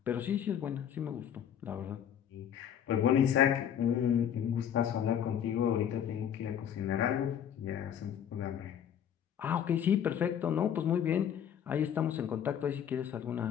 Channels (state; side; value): quieter; right; 9.2 dB